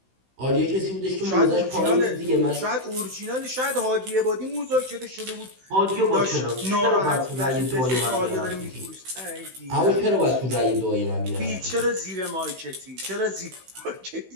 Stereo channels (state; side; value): late; left; 16 ms